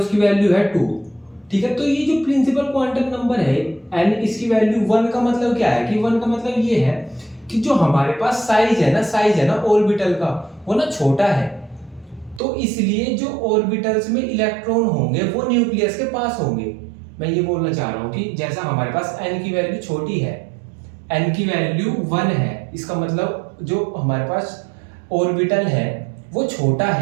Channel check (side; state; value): left; drops out; at 12.4 s